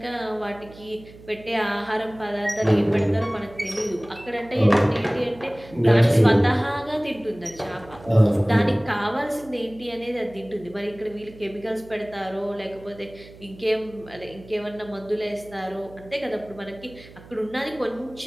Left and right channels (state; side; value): noise; right; hum, 20 dB below the sound